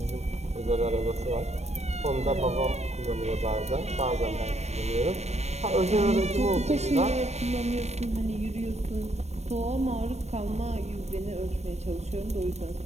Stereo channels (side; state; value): left; late; 0.32 ms